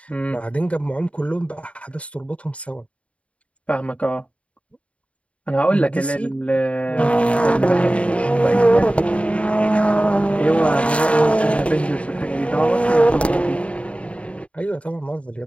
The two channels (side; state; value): right; late; 0.063 ms